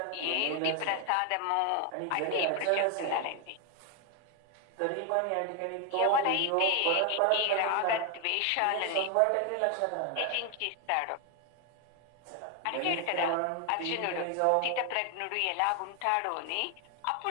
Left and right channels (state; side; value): different; both; correlation 0.01